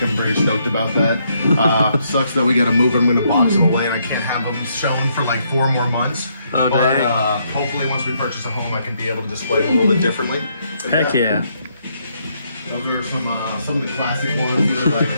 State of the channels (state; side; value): inverted; both; correlation -0.74